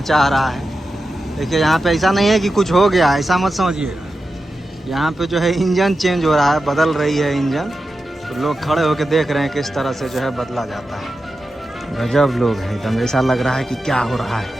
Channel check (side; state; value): both; normal; correlation 0.91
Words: चाह रहा है। देखिए यहाँ पे ऐसा नहीं है कि कुछ हो गया, ऐसा मत समझिए। यहाँ पे जो है इंजन चेंज हो रहा है, बदल रही है इंजन, तो लोग खड़े होकर देख रहे हैं किस तरह से जो है बदला जाता है। गजब लोग हैं एकदम, ऐसा लग रहा है कि क्या हो रहा है।